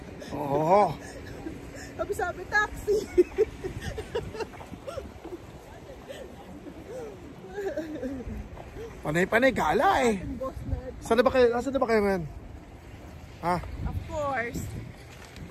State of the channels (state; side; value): identical; both; correlation 1.00